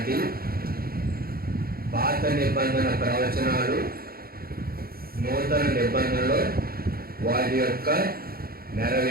పాత నిబంధన ప్రవచనాలు, నూతన నిబంధనలో వాటి యొక్క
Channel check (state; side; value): late; left; 0.44 ms